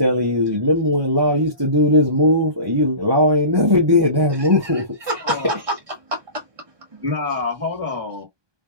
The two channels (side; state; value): left; late; 1.2 ms